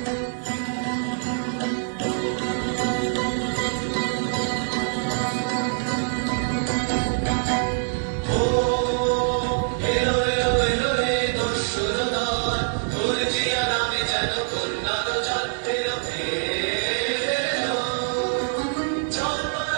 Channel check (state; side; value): silent; left; 62 dB below the other